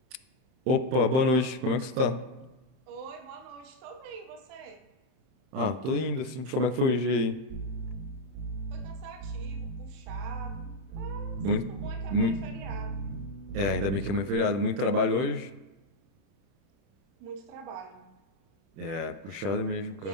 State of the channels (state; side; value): late; left; 31 ms